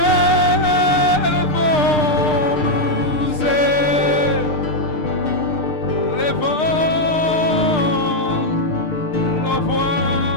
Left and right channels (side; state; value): right; late; 6.6 ms